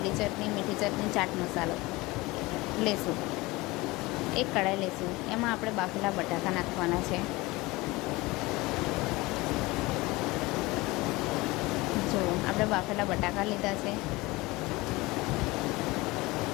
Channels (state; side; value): quieter; right; 21.8 dB